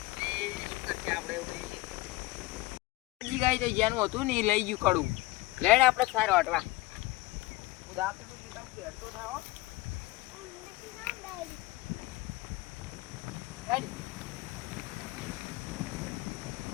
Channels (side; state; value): right; quieter; 19.8 dB